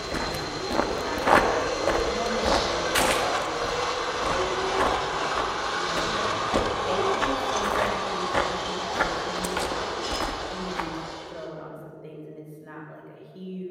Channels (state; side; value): identical; both; correlation 1.00